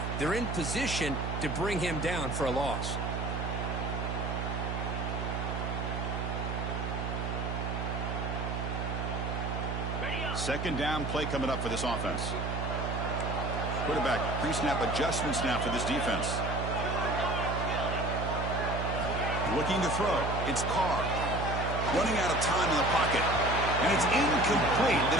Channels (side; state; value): right; noise; hum, 3 dB below the sound